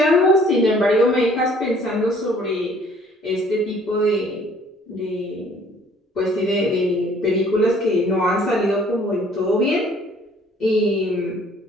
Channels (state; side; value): normal; both; correlation 0.57